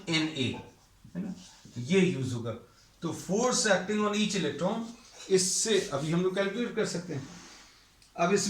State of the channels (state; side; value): identical; both; correlation 1.00